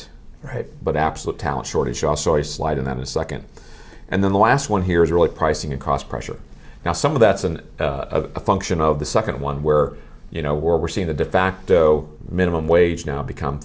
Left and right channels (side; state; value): both; identical; correlation 1.00